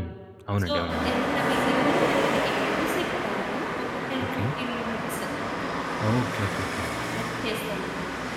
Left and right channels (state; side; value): identical; both; correlation 1.00